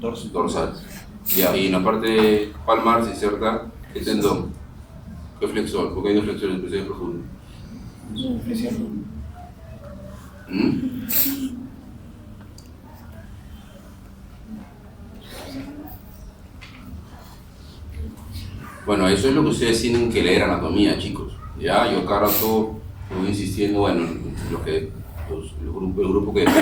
Dorsal. Ya, y en la parte palmar se inserta el tendón. ¿Qué flexor? Porque hay dos flexores especiales profundos. Bueno, eso es lo que ustedes tienen que leer anatomía, chicos. Ya, yo cada rato voy insistiendo, bueno, el grupo que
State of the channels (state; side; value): identical; both; correlation 1.00